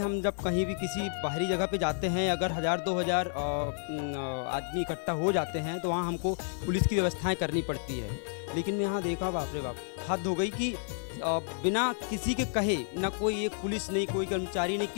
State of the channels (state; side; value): silent; right; digital silence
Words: जब कहीं भी किसी बाहरी जगह पे जाते हैं, अगर 1000-2000 आदमी इकट्ठा हो जाते हैं तो वहाँ हमको पुलिस की व्यवस्थाएं करनी पड़ती है। लेकिन मैं यहाँ देखा, बाप रे बाप, हद हो गई कि बिना किसी के कहे, ना कोई एक पुलिस नहीं, कोई कर्मचारी नहीं,